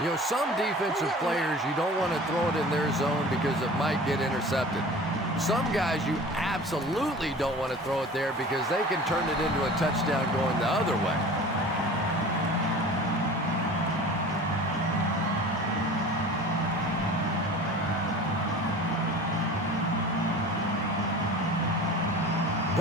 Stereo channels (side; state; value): both; normal; correlation 0.40